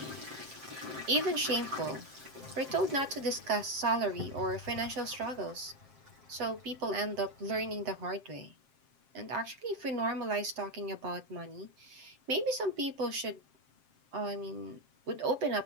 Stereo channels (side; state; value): left; late; 7.5 ms